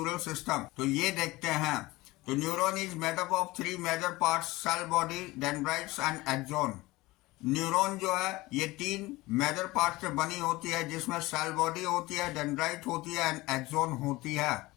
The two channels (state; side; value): quieter; right; 20.2 dB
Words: system तो ये देखते हैं। तो neuron is made up of three major parts, cell body, dendrites and axon. Neuron जो है ये 3 मेजर पार्ट से बनी होती है, जिसमें सेल बॉडी होती है, डेंड्राइट होती है एंड एक्सोन होती है।